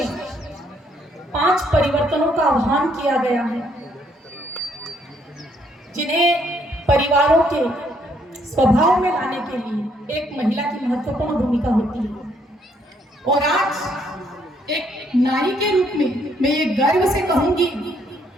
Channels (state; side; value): normal; both; correlation 0.69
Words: 5 परिवर्तनों का आह्वान किया गया है, जिन्हें परिवारों के स्वभाव में लाने के लिए एक महिला की महत्वपूर्ण भूमिका होती है। और आज एक नारी के रूप में मैं ये गर्व से कहूंगी